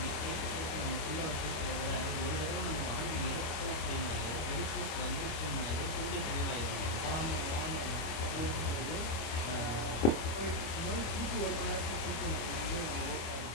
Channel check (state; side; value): late; right; 25 ms